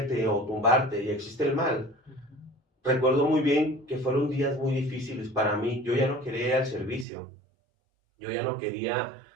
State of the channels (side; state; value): left; drops out; at 7.1 s